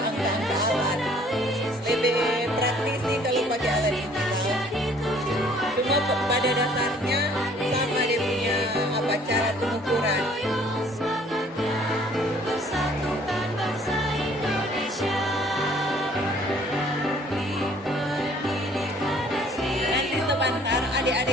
alat. Lebih praktis sih kalau pakai alat ini. Cuma pada dasarnya sama dia punya cara pengukuran. Nanti sebentar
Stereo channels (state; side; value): normal; both; correlation 0.57